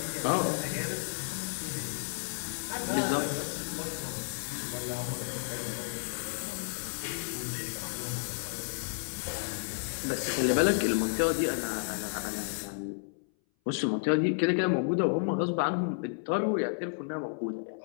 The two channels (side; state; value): right; silent; 57 dB below the other